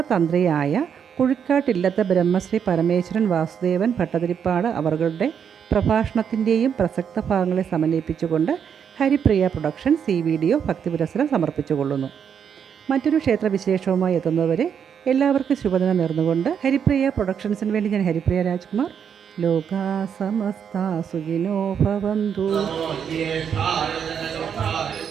കുഴിക്കാട്ടില്ലത്തെ ബ്രഹ്മശ്രീ പരമേശ്വരൻ വാസുദേവൻ ഭട്ടതിരിപ്പാട് അവരുടെ പ്രഭാഷണത്തിൻ്റെയും പ്രസക്ത ഭാഗങ്ങളെ സമന്വയിപ്പിച്ചുകൊണ്ട് ഹരിപ്രിയ പ്രൊഡക്ഷൻസ് ഈ വീഡിയോ ഭക്തിപുരസ്സരം സമർപ്പിച്ചുകൊള്ളുന്നു. മറ്റൊരു ക്ഷേത്രവിശേഷവുമായി എത്തുന്നവരെ എല്ലാവർക്കും ശുഭദിനം നേർന്നുകൊണ്ട് ഹരിപ്രിയ പ്രൊഡക്ഷൻസിന് വേണ്ടി ഞാൻ ഹരിപ്രിയ രാജ്കുമാർ. ലോകാ സമസ്ത സുഖിനോ ഭവന്തു.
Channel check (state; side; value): quieter; left; 7.7 dB